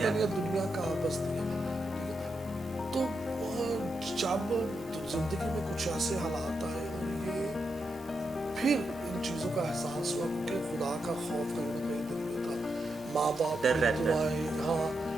ہے دنیا کہاں بستی ہے, ٹھیک ہے. تو جب زندگی میں کچھ ایسے حالات آئے, اور یہ پھر ان چیزوں کا احساس ہوا, کیونکہ خدا کا خوف کہیں نہ کہیں دل میں تھا, ماں باپ کی دعائیں, ہاں,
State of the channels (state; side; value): normal; both; correlation 0.85